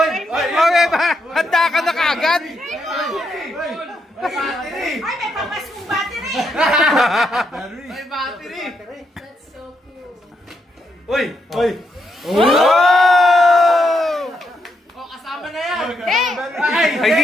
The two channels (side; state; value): both; normal; correlation 0.80